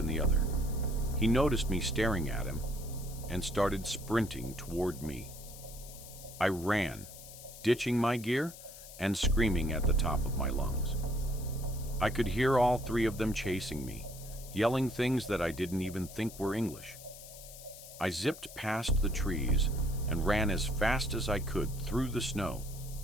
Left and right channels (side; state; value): left; noise; hiss, 16 dB below the sound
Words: in the other. He noticed me staring at him and started sprinting toward me. I ran, ditching my gear and screaming at the top of my lungs. I could hear all three of them chasing me, yelling things that I didn't even think were English. I zipped past the trees and ran as fast as I could through the snow,